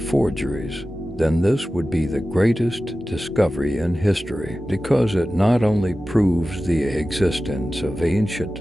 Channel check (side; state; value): both; normal; correlation 0.95